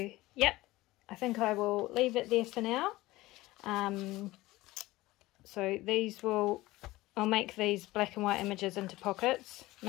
yep, I think I will leave it there for now. So these I'll make these black and white images into pockets,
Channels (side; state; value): right; quieter; 18.5 dB